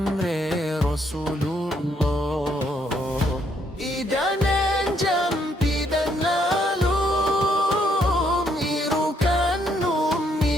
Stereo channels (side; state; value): both; normal; correlation 0.71